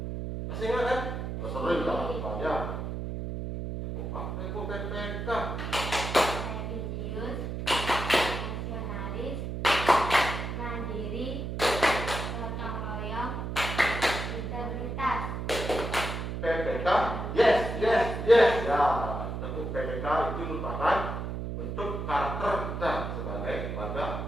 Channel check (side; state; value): right; noise; hum, 4 dB below the sound